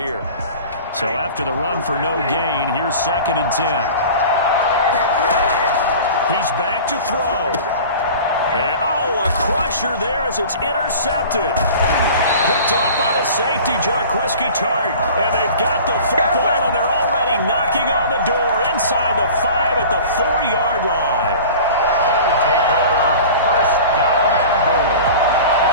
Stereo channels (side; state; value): both; inverted; correlation -0.40